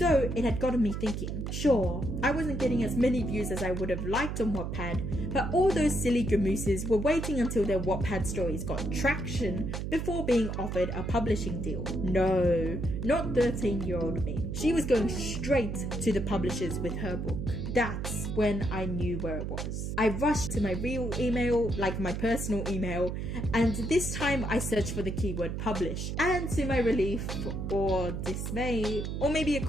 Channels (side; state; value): right; noise; hum, 4 dB below the sound